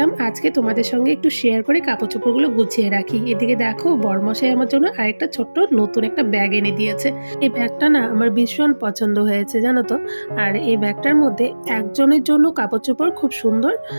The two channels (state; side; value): inverted; both; correlation -1.00